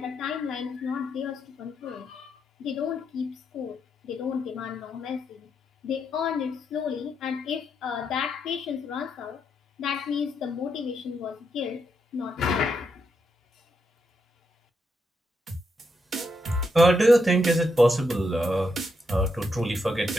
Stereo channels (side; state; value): both; normal; correlation 0.80